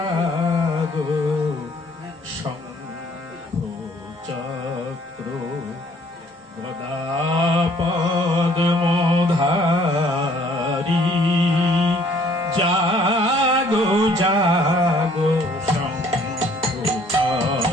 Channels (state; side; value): normal; both; correlation 0.59